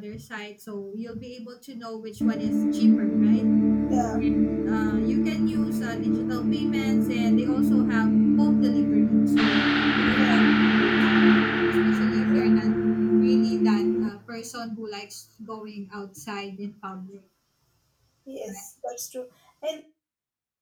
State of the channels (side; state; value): both; identical; correlation 1.00